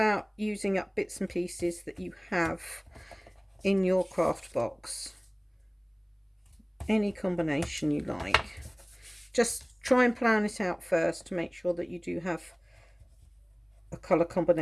using up bits and pieces that you have in your craft box. Any combination you like. Just try and plan it out first to make sure that you do have a colour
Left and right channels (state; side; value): identical; both; correlation 1.00